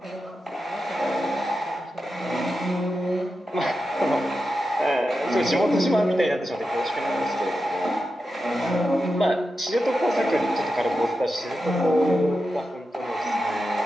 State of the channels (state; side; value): normal; both; correlation 0.90